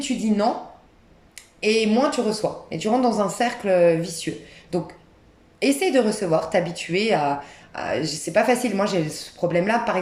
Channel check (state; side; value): identical; both; correlation 1.00